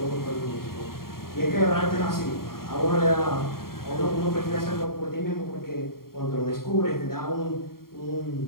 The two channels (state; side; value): late; right; 0.93 ms